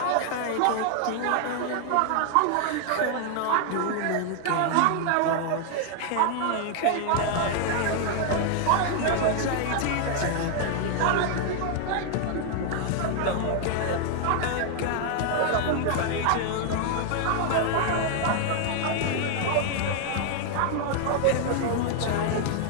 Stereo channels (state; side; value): different; both; correlation 0.00